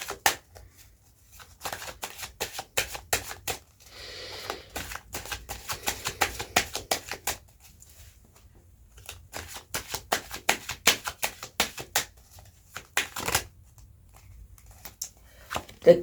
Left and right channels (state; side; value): identical; both; correlation 1.00